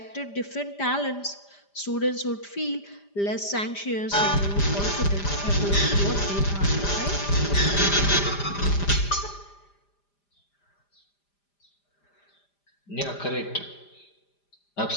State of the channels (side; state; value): right; late; 5.0 ms